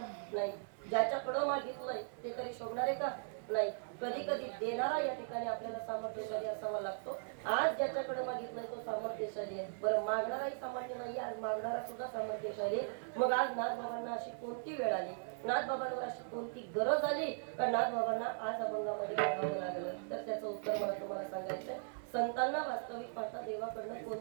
नाही. ज्याच्याकडं मागितलंय ते तरी शोभणार आहे का? नाही. कधी कधी देणारा या ठिकाणी आपल्याला सामर्थ्यशाली असावा लागतो. आज ज्याच्याकडे मागितलंय तो सामर्थ्यशाली आहे. बरं, मागणाराही सामान्य नाही, आज मागणारा सुद्धा सामर्थ्यशाली. मग आज नाथबाबांना अशी कोणती वेळ आली, नाथबाबांवर अशी कोणती गरज आली का नाथबाबांना आज अभंगामध्ये मागावं लागलं? तर त्याचं उत्तर मला तुम्हाला सांगायचंय. संतांना वास्तविक पाहता देवाकडनं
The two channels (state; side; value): silent; left; digital silence